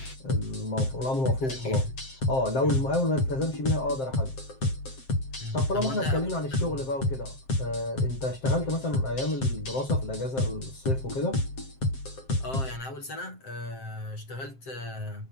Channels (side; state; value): right; late; 7.6 ms